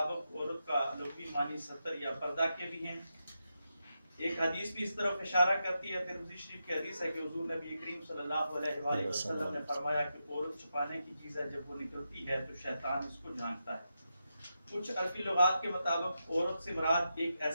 عورت کا لغوی معنی ستر یا پردہ کے بھی ہیں۔ ایک حدیث بھی اس طرف اشارہ کرتی ہے، ترمذی شریف کی حدیث ہے کہ حضور نبی کریم صلی اللہ علیہ وآلہ وسلم نے فرمایا کہ عورت چھپانے کی چیز ہے، جب وہ نکلتی ہے تو شیطان اس کو جھانکتا ہے۔ کچھ عربی لغات کے مطابق عورت سے مراد ایک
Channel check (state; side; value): inverted; both; correlation -0.87